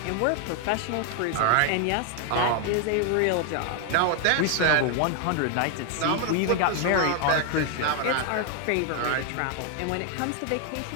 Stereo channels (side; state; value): both; different; correlation 0.00